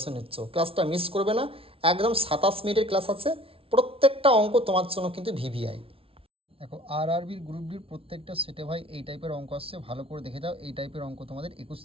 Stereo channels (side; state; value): left; late; 0.26 ms